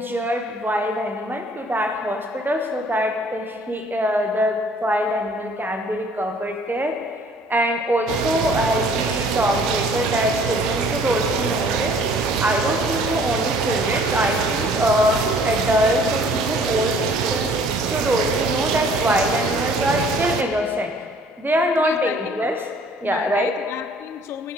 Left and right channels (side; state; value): both; normal; correlation 0.56